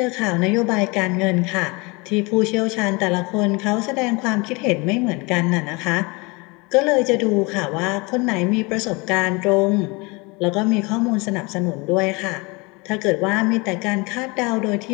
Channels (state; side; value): quieter; right; 27.0 dB